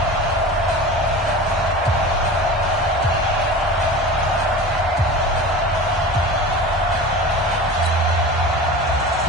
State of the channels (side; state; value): both; normal; correlation 0.34